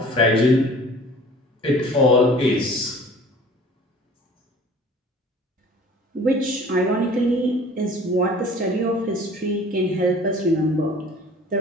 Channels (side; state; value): both; normal; correlation 0.47